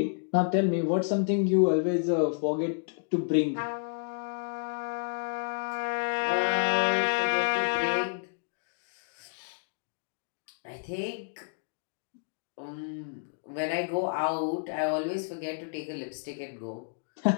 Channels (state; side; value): silent; right; digital silence